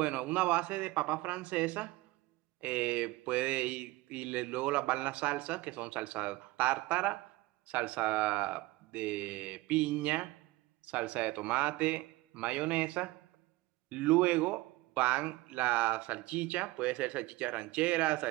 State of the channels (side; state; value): left; quieter; 20.3 dB